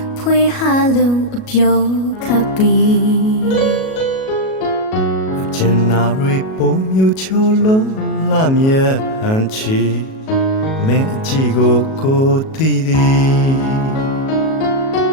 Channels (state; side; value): late; right; 37 ms